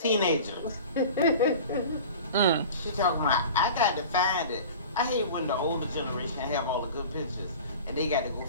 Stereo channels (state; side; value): inverted; both; correlation -0.38